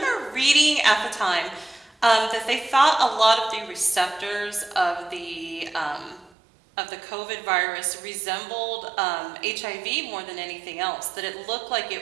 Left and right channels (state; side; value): drops out; left; at 6.3 s